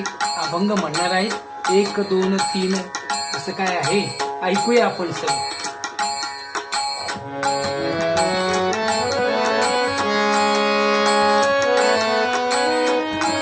अभंग म्हणणार आहेत. 1 2 3 असं काय आहे, ऐकूया आपण सगळं.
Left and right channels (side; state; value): both; identical; correlation 1.00